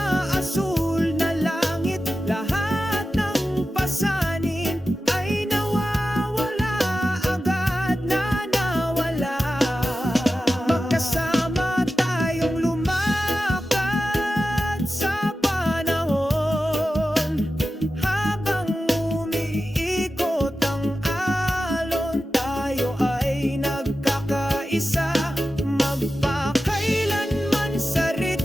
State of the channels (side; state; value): both; normal; correlation 0.93